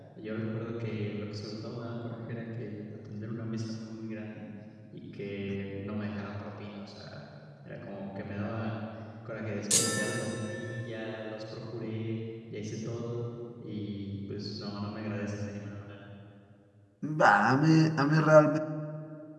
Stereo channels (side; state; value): both; identical; correlation 1.00